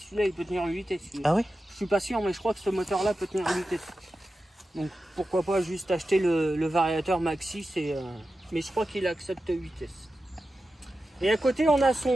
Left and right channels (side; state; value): both; normal; correlation 0.92